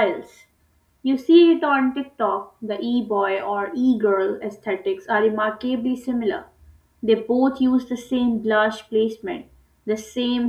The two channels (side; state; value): both; identical; correlation 1.00